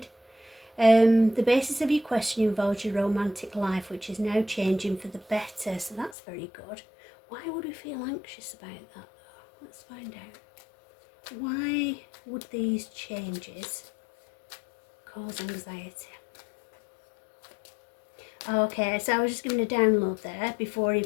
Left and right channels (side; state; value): right; drops out; at 6.2 s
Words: The basis of your question involves your romantic life, which is now changing for the better, so that's very good. Why would we feel anxious about that though? Let's find out. Why would these changes cause anxiety? Okay, so I was just giving a download there before